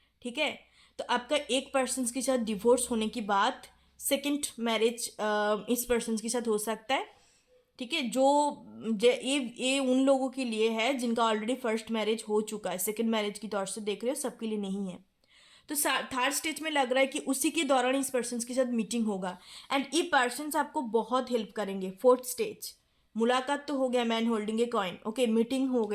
ठीक है। तो आपका एक पर्सन के साथ डिवोर्स होने के बाद सेकेंड मैरिज इस पर्सन के साथ हो सकता है, ठीक है। ये उन लोगों के लिए है जिनका ऑलरेडी फर्स्ट मैरिज हो चुका है, सेकंड मैरिज की तौर से देख रहे हो, सबके लिए नहीं है। तो थर्ड स्टेज में लग रहा है कि उसी के दौरान इस पर्सन के साथ मीटिंग होगा एंड ये पर्सन आपको बहुत हेल्प करेंगे। फोर्थ स्टेज, मुलाकात तो हो गया, man holding a coin, okay, meeting हो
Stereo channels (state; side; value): identical; both; correlation 1.00